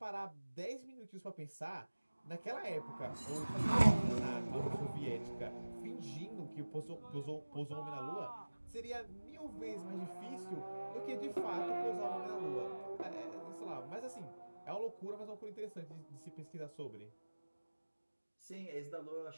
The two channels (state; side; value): inverted; both; correlation -1.00